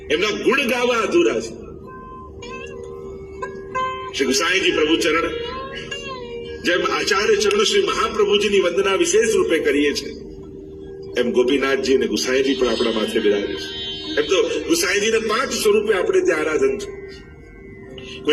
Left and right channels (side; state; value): both; identical; correlation 1.00